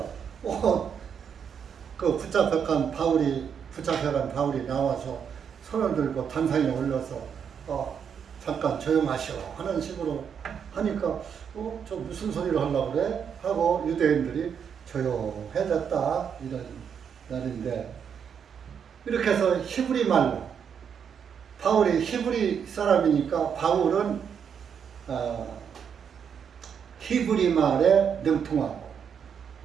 그 붙잡혀간 바울이 나와서 손을 들고 단상에 올려서 잠깐 조용하시오 하는 식으로 하니까 저 무슨 소리를 하려고 그래? 하고 유대인들이 조용해졌다 이런 날인데, 이렇게 해서 히브리 말로, 바울이 히브리 사람이니까 바울은 히브리 말에 능통하고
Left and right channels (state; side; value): quieter; left; 7.4 dB